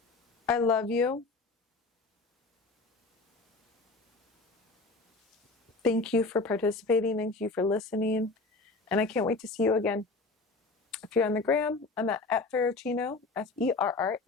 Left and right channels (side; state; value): right; quieter; 3.6 dB